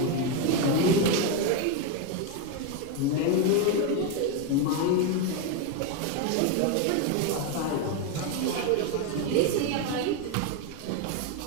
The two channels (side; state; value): both; different; correlation 0.02